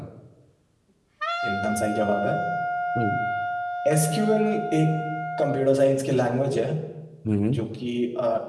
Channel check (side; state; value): both; identical; correlation 1.00